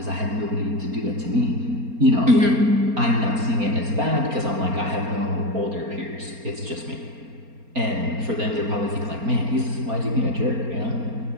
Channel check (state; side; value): late; left; 4.3 ms